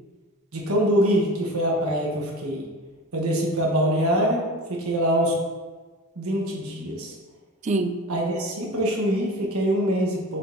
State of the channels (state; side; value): normal; both; correlation 0.35